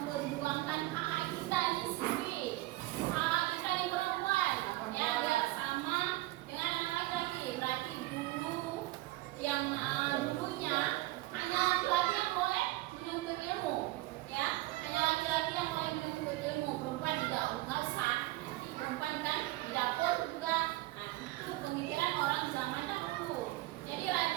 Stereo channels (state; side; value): quieter; left; 18.5 dB